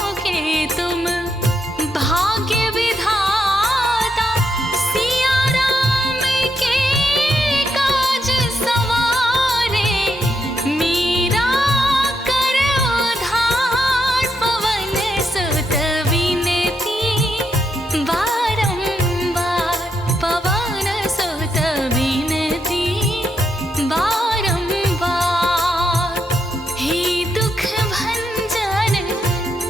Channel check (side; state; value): both; normal; correlation 0.80